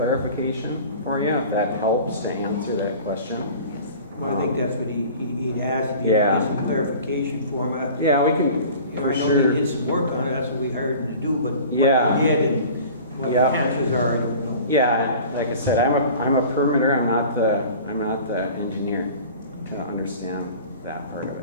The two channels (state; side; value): inverted; both; correlation -0.42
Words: for you if that helps to answer that question. Well, I think that's what he'd asked, if he Yeah. get some clarification for him. Yeah, we can, for I know sure. they did some work on it, that's what we hired him to do, but Yeah. what he did and what the Yeah. chances are, I don't know. Yeah, like I said, I'm a permitter. I'm not the engineer to understand that part of